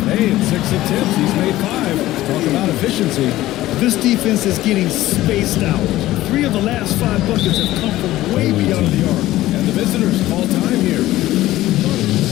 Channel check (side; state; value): right; quieter; 15.8 dB